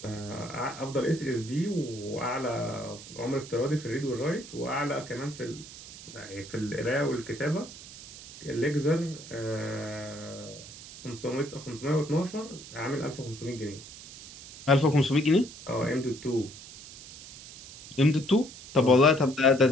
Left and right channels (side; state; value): right; noise; hiss, 15 dB below the sound